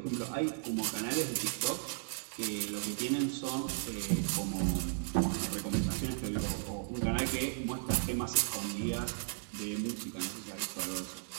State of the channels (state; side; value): silent; left; digital silence